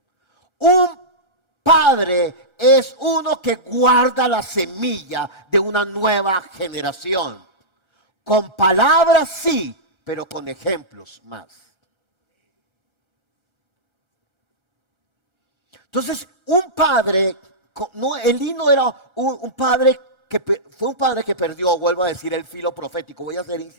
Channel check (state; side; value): late; left; 1.3 ms